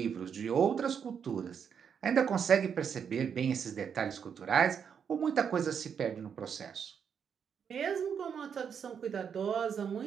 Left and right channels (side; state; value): left; quieter; 7.3 dB